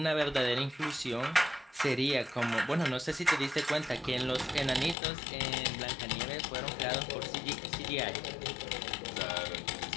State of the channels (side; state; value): right; drops out; at 5.0 s